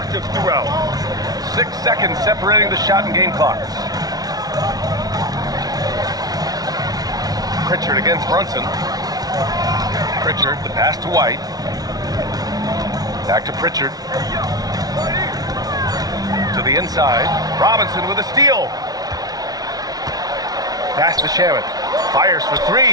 throughout. 6 seconds separating the shot and game clocks. Pritchard against Brunson. Pritchard, the pass to White. Back to Pritchard. To the inside. Robinson with a steal. Pass to Shamet. Fires for 3.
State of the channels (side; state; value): left; late; 0.19 ms